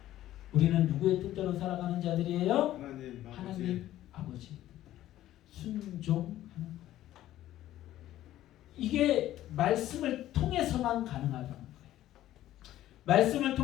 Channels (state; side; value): quieter; right; 13.7 dB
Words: 우리는 누구의 뜻대로 살아가는 자들이에요? 하나님 아버지의 뜻대로 순종하는 거예요. 이게 말씀을 통해서만 가능하다는 거예요. 말씀을